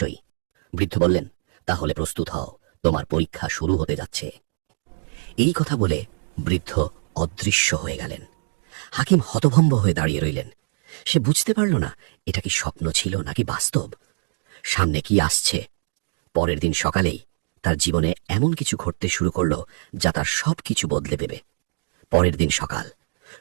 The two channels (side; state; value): left; silent; digital silence